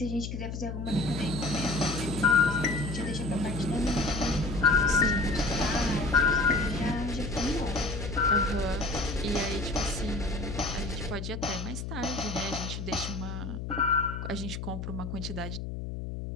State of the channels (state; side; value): noise; left; hum, 6 dB below the sound